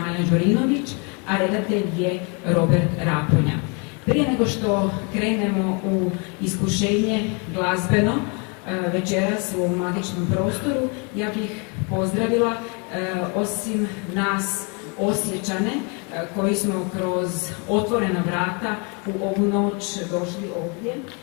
Đorinović, a redatelj je Robert Raponja. Prije nego što krenemo u iskušenje glazbeno večeras u ovom magičnom prostoru, ja bih pozdravila osim nas Osječane koji smo kroz otvorena vrata u ovu noć došli ovdje.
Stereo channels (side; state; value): right; quieter; 33.9 dB